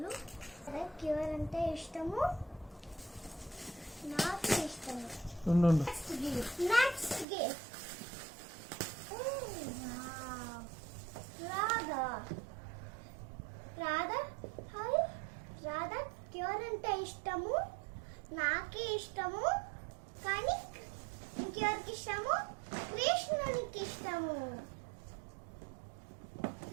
ఎవరంటే ఇష్టము, నాకు ఇష్టము. Next gift Radha. Radha hi. Radha ఎవరంటే ఇష్టము, నాకే ఇష్టము. కానీ ఇంకెవరికి ఇష్టము, కృష్ణునికి ఇష్టము.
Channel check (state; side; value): drops out; left; at 7.2 s